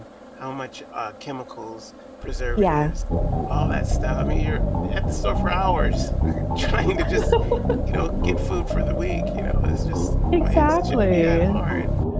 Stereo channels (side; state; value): both; identical; correlation 1.00